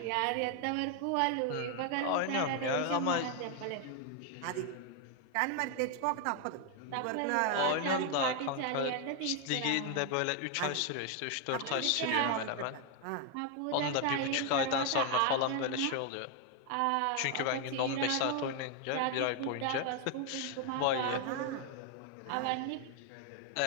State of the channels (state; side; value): different; both; correlation 0.01